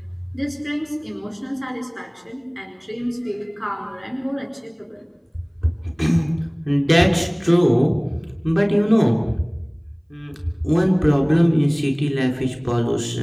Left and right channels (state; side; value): identical; both; correlation 1.00